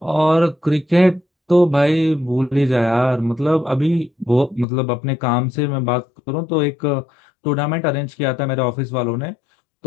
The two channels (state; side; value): drops out; right; at 4.7 s